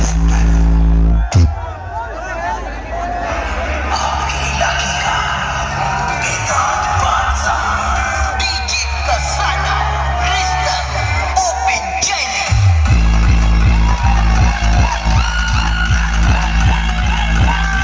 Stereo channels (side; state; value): both; identical; correlation 1.00